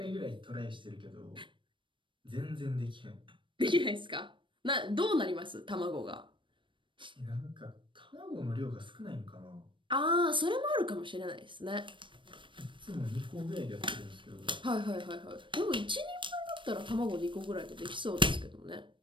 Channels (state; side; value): late; left; 0.24 ms